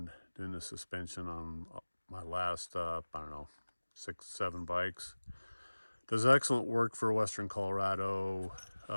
doing the suspension on my last, I don't know, 6, 7 bikes. Does excellent work for Western Colorado,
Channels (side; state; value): both; inverted; correlation -1.00